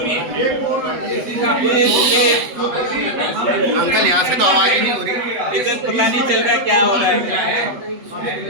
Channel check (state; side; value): late; left; 8.0 ms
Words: अंकल यहाँ से तो आवाज ही नहीं हो रही, इधर पता नहीं चल रहा क्या हो रहा है।